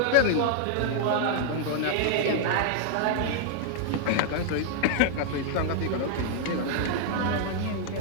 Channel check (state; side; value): different; both; correlation -0.01